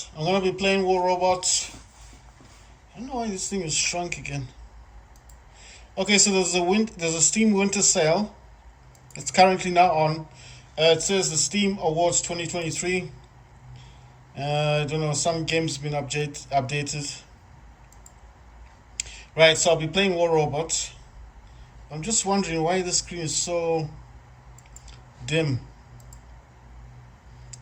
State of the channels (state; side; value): identical; both; correlation 1.00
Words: I'm gonna be playing War Robots. I don't know why this thing is shrunk again. Okay, so there's a Steam Winter Sale. It's currently now on. It says the Steam Awards 2023. I don't know, some games been updated. Right, so I'll be playing War Robots. I'm just wondering why the screen is so dim.